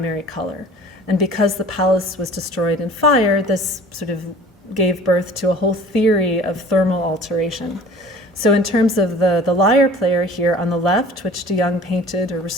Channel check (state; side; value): normal; both; correlation 0.46